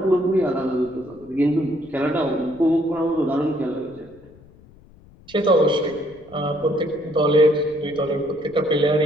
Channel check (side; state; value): left; noise; rumble, 25 dB below the sound